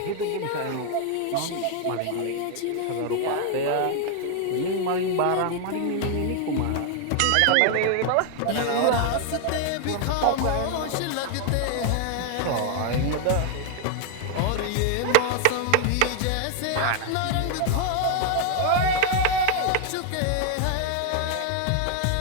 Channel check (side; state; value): both; different; correlation 0.00